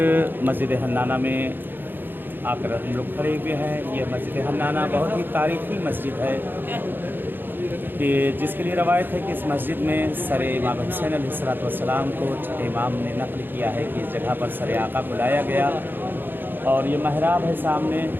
مسجد حنانہ میں آ کر ہم لوگ کھڑے ہوئے ہیں۔ یہ مسجد حنانہ بہت ہی تاریخی مسجد ہے کہ جس کے لیے روایت ہے کہ اس مسجد میں سر امام حسین علیہ السلام کو امام نے نقل کیا ہے کہ اس جگہ پر سر آقا کو لایا گیا، اور یہ محراب ہے سامنے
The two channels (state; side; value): late; left; 0.096 ms